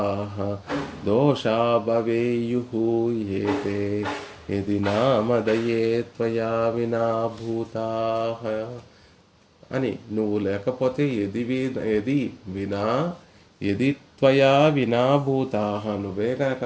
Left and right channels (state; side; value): identical; both; correlation 1.00